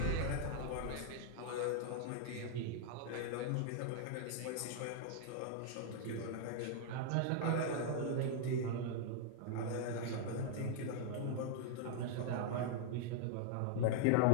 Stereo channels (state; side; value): different; both; correlation -0.01